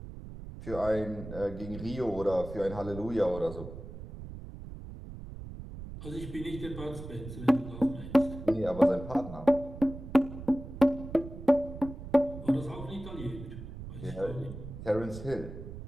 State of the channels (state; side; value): noise; right; rumble, 11 dB below the sound